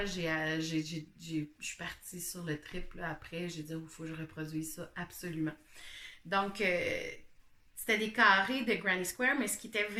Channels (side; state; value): both; identical; correlation 1.00